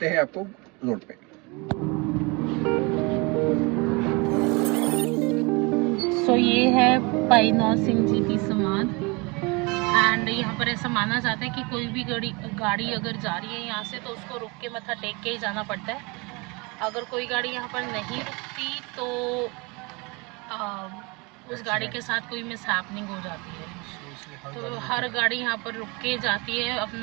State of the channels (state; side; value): quieter; left; 28.0 dB